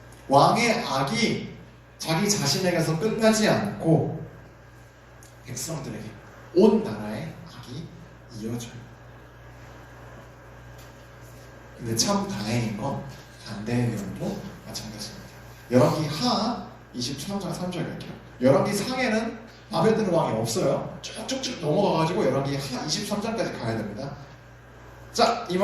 왕의 악이 자기 자신에게서 끝나지 않고 백성들에게, 온 나라의 악이 이어져요. 근데 참 다행인 건 반대의 경우도 마찬가지입니다. 열왕기 하 23장 3절 갈게요. 열왕기 상에는 바벨론 왕이 없어요. 쭉쭉쭉 넘어가가지고 열왕기 하 23장까지 가야 됩니다. 자, 이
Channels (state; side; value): identical; both; correlation 1.00